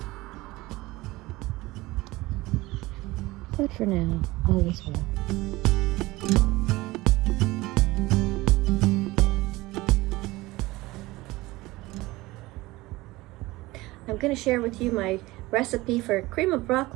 But for now, all is well. I'm going to share with you my recipe for cream of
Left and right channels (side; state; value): left; quieter; 19.9 dB